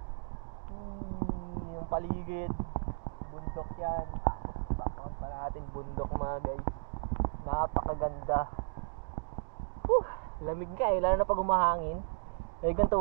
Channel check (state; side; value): silent; left; digital silence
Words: Yung paligid, bundok yan. Tapos background pa natin, bundok mga guys. Napakaganda. Lamig ka lalo na pag umahangin. Lamig ng